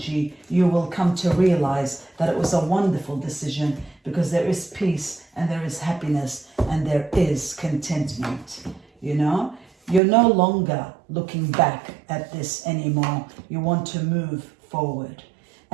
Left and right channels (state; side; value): drops out; left; at 10.0 s